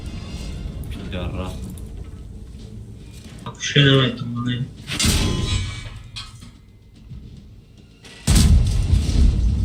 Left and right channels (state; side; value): identical; both; correlation 1.00